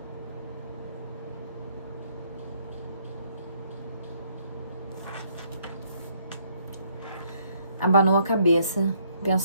Abanou a cabeça,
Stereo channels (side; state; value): both; inverted; correlation -0.68